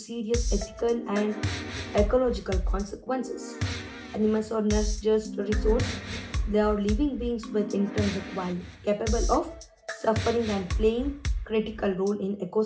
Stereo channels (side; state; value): both; identical; correlation 1.00